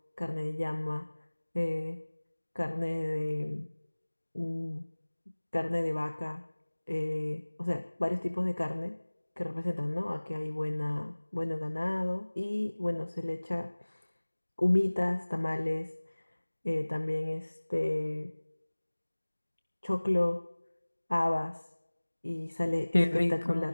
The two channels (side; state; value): both; inverted; correlation -1.00